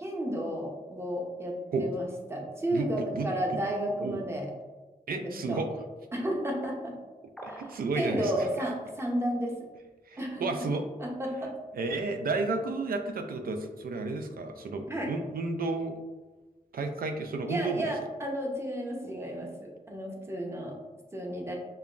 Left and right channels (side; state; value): both; normal; correlation 0.65